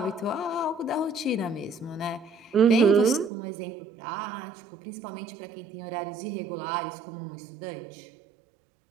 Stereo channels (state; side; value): drops out; left; at 3.3 s